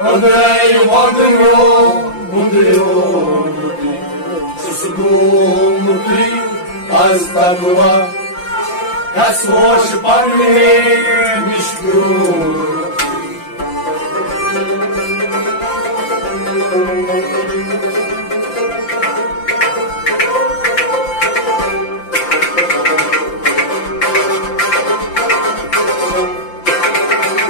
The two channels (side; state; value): right; late; 5.8 ms